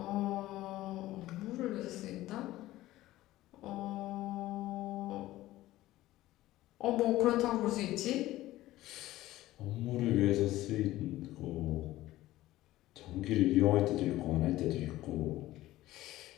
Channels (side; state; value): right; quieter; 16.1 dB